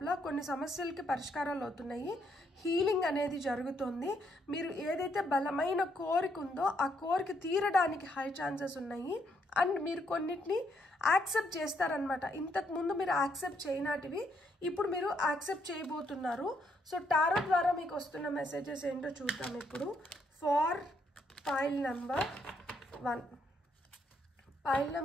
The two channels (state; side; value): normal; both; correlation 0.74